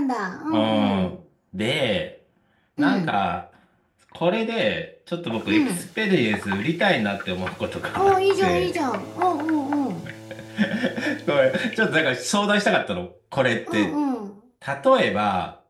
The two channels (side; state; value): both; identical; correlation 1.00